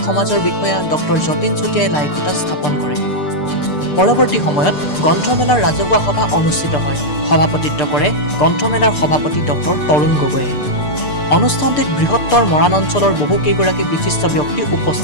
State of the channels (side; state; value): right; late; 6.7 ms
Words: সমাজৰ বিষয়া ডক্টৰ যতীন চুতীয়াই লাইখুটা স্থাপন কৰে। পৰৱৰ্তী সময়ত গ্ৰন্থমেলাৰ ৰাজহুৱা সভা অনুষ্ঠিত হয়। সভাপতিত্ব কৰে গ্ৰন্থমেলাৰ সভাপতি ডক্টৰ তৰুণ গগৈয়ে। অনুষ্ঠানটিত বৃহত্তৰ মৰাণ অঞ্চলৰ বহুকেইগৰাকী বিশিষ্ট ব্যক্তি